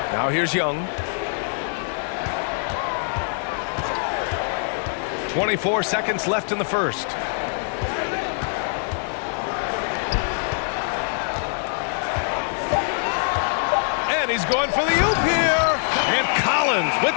Now here's Young. 24 seconds left in the first. And he's going for the oop here. And Collins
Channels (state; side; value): silent; right; digital silence